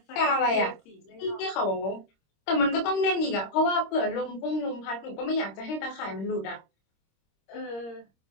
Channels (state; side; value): late; right; 26 ms